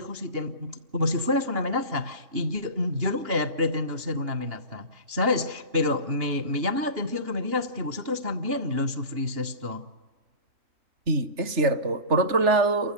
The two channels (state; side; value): late; left; 2.9 ms